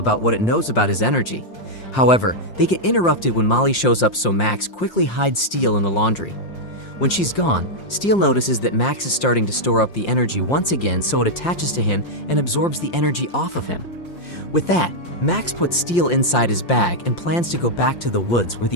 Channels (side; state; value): right; late; 5.7 ms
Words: what it knows about his energy. However, they get interrupted when Molly shows up, so Max quickly hides Steel in the laundry. When she's gone, Steel notices that Max is starting to store up the energy once again, so it attaches to him and absorbs the energy off of him. With that, Max puts Steel inside his bag and plans to go back to the woods where